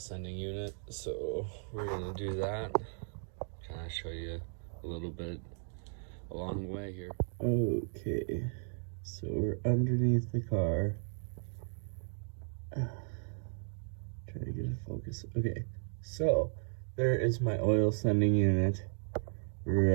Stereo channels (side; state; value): left; silent; 54 dB below the other